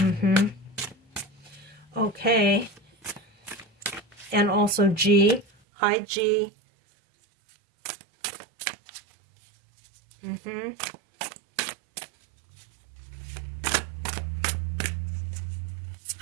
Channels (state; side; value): drops out; left; at 5.5 s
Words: Okay. And also G. Hi, G.